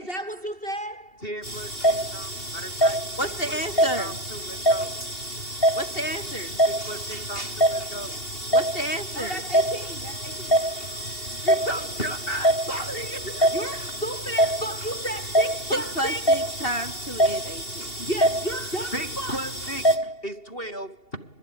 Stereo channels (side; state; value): right; late; 2.7 ms